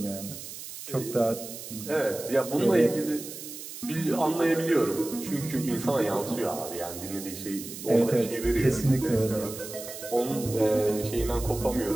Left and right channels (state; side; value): noise; right; hiss, 11 dB below the sound